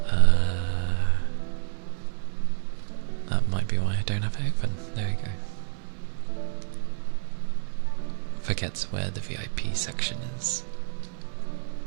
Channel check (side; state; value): left; silent; 59 dB below the other